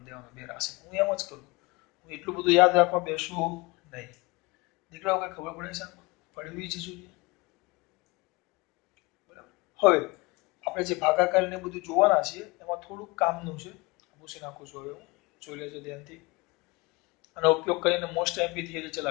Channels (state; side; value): quieter; right; 25.0 dB